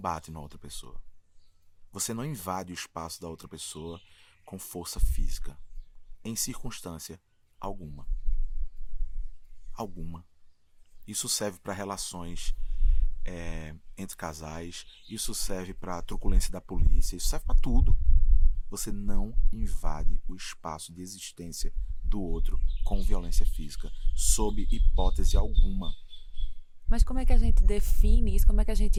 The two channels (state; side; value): identical; both; correlation 1.00